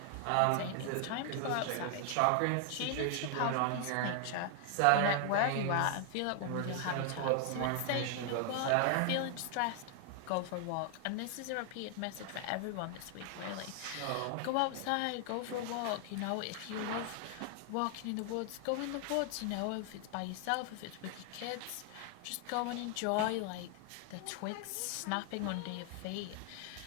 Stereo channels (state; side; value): different; both; correlation 0.00